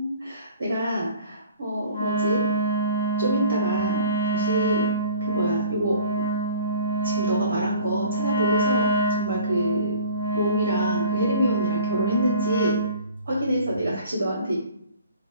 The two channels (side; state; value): both; inverted; correlation -0.47